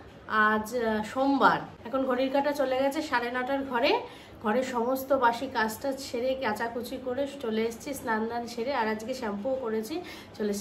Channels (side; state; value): both; identical; correlation 1.00